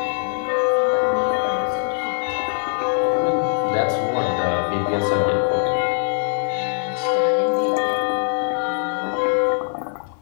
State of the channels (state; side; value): silent; right; 64 dB below the other